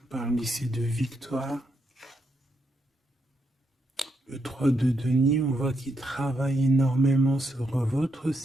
parle ici de victoire. Le 3 de denier, on voit qu'il travaille énormément sur votre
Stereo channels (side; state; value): both; normal; correlation 0.80